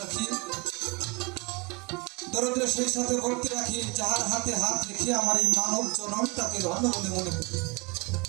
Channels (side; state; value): left; quieter; 28.2 dB